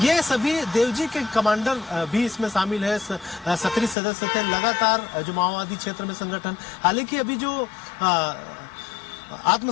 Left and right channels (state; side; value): drops out; right; at 4.0 s